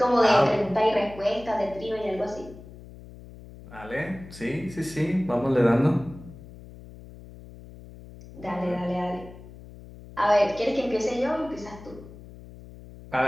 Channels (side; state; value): left; noise; hum, 17 dB below the sound